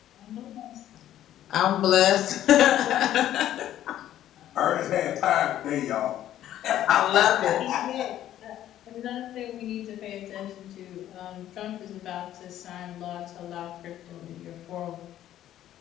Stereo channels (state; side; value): quieter; right; 12.2 dB